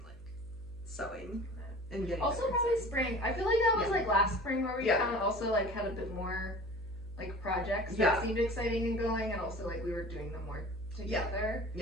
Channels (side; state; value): right; noise; hum, 24 dB below the sound